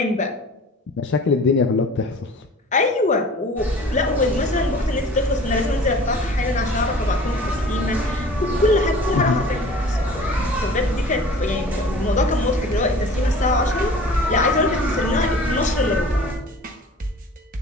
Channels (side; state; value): both; normal; correlation 0.45